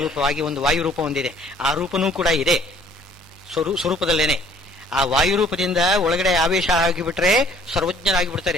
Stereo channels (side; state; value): both; normal; correlation 0.57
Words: ಒಂದು ವಾಯುರೂಪ ಒಂದಿದೆ. ಆ ರೂಪನೂ ಕೂಡ ಇದೆ ಸ್ವರೂಪದಲ್ಲೇನೆ. ಆ ವಾಯುರೂಪದಿಂದ ಒಳಗಡೆ ಆವೇಶ ಆಗಿಬಿಟ್ರೆ